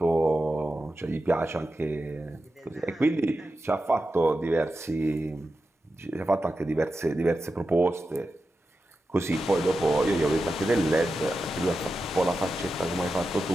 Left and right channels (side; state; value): both; normal; correlation 0.91